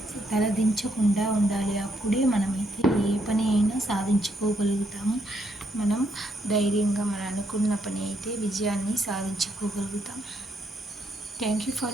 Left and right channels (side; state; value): both; normal; correlation 0.75